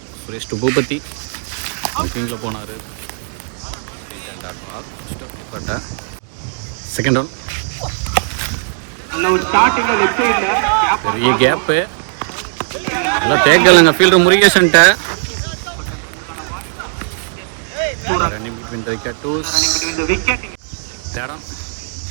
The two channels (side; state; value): left; silent; digital silence